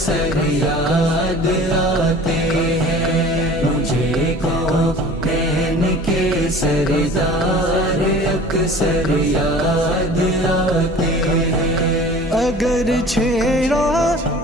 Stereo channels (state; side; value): normal; both; correlation 0.44